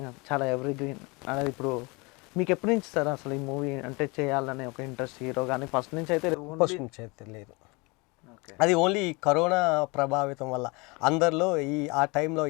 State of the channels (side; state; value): right; quieter; 27.5 dB